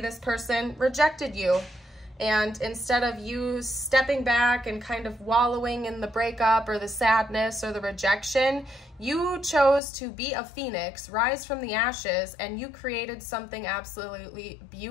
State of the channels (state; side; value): drops out; right; at 9.8 s